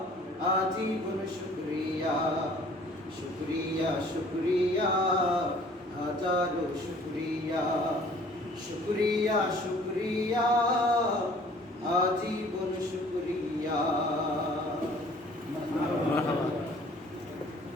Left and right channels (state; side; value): normal; both; correlation 0.53